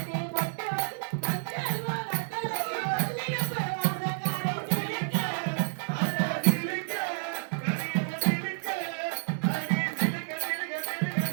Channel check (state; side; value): silent; left; digital silence